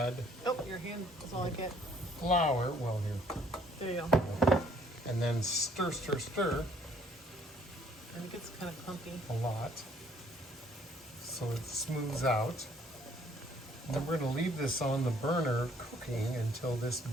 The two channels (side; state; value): both; normal; correlation 0.62